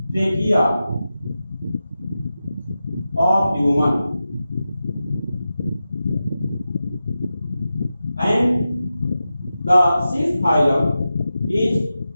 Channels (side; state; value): both; inverted; correlation -0.92